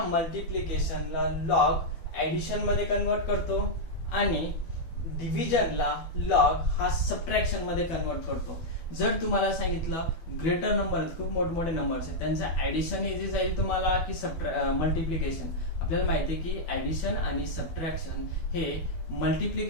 मल्टिप्लिकेशनला लॉग ऍडिशन मध्ये कन्वर्ट करतो आणि डिव्हिजनला लॉग हा सबट्रॅक्शन मध्ये कन्वर्ट करतो. जर तुम्हाला सांगितलं ग्रेटर नंबर आहेत, खूप मोठमोठे नंबर्स आहेत, त्यांचं ऍडिशन इझी जाईल तुम्हाला की मल्टिप्लिकेशन? आपल्याला माहिती आहे की ऍडिशन आणि सबट्रॅक्शन हे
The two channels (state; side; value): late; right; 12 ms